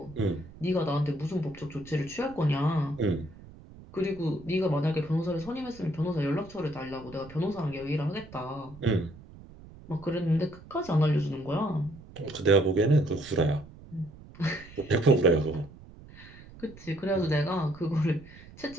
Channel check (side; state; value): right; noise; rumble, 19 dB below the sound